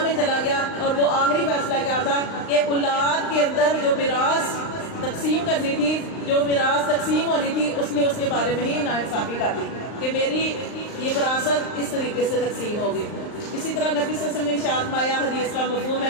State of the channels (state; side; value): late; right; 39 ms